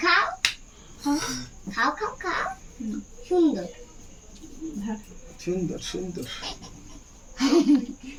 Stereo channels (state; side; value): identical; both; correlation 1.00